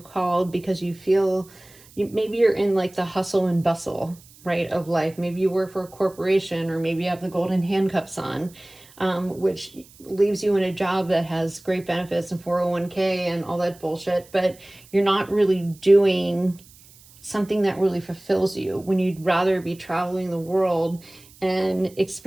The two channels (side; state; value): right; noise; hiss, 25 dB below the sound